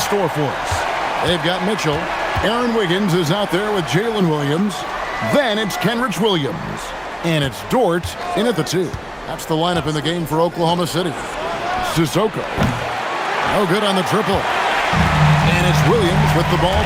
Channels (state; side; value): identical; both; correlation 1.00